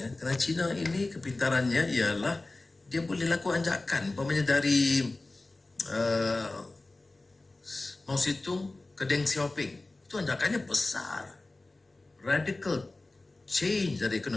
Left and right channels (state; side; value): quieter; right; 3.1 dB